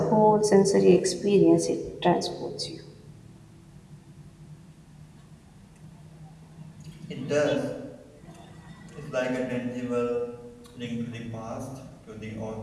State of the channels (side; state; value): both; identical; correlation 1.00